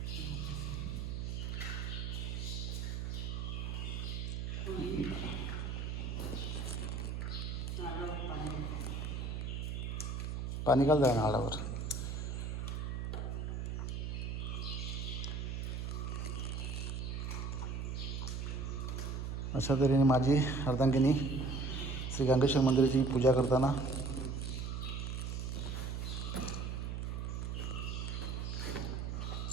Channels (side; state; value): right; noise; hum, 3 dB below the sound